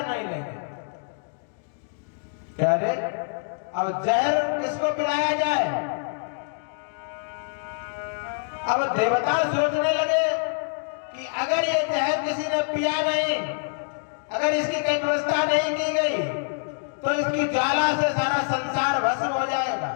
नहीं लेंगे। क्या रे, अब जहर किसको पिलाया जाए। अब देवता सोचने लगे कि अगर ये जहर किसी ने पिया नहीं, अगर इसकी कोई व्यवस्था नहीं की गई तो इसकी ज्वाला से सारा संसार भस्म हो जाएगा।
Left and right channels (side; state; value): right; silent; digital silence